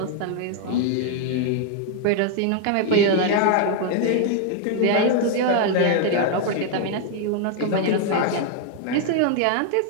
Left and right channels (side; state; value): both; different; correlation 0.00